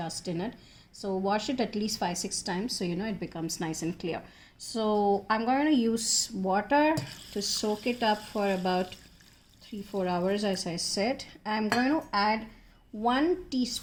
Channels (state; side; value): identical; both; correlation 1.00